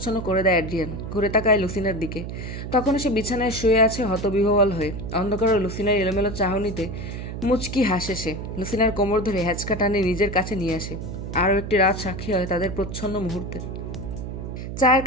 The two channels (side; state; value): right; noise; hum, 7 dB below the sound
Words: করে দেয় অ্যাড্রিয়ান। ঘুরে তাকায় লুসিনার দিকে। তখন সে বিছানায় শুয়ে আছে হতবিহ্বল হয়ে। অন্ধকার লুসিনার এলোমেলো চাহনিতে মুচকি হাসে সে। লুসিনার কোমর ধরে হ্যাচকা টানে নিজের কাছে নিয়ে আসে। আরও একটি রাত সাক্ষী হয় তাদের প্রচ্ছন্ন মুহূর্তে। চায়ের